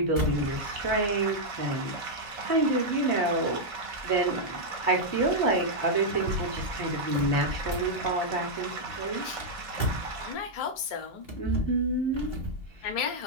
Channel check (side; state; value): right; late; 3.2 ms